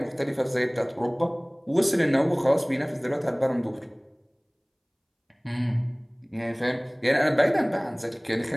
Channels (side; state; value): both; identical; correlation 1.00